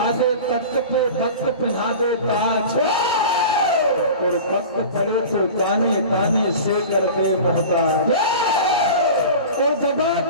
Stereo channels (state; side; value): inverted; both; correlation -0.36